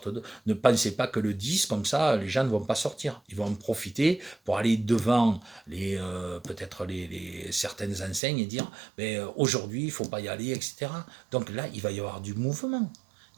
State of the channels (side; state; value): left; drops out; at 8.2 s